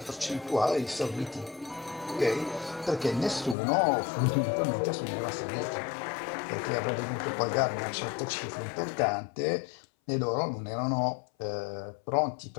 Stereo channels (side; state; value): right; drops out; at 3.6 s